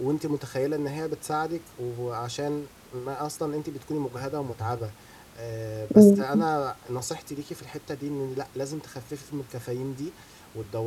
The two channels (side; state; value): both; identical; correlation 1.00